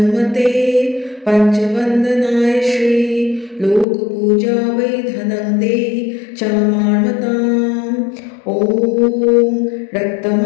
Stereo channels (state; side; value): drops out; right; at 3.9 s